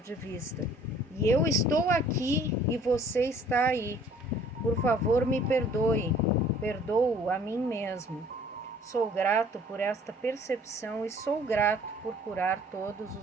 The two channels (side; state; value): both; normal; correlation 0.55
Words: vista. E eu estou aqui e você está aí. Por favor, me perdoe. Perdoo a mim mesmo. Sou grato por esta percepção e sou grato por curar todos